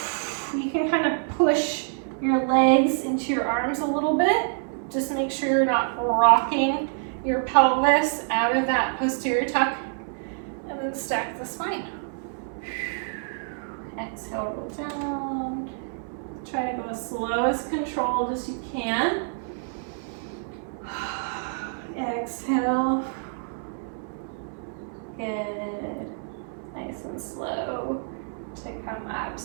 You can kind of push your legs into your arms a little bit. Just make sure you're not rocking your pelvis out of that posterior tuck. And then stack the spine. Exhale, roll down. Try to go as slow as controlled as you can. Exhale. Good. Nice and slow to come up.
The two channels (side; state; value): left; silent; 60 dB below the other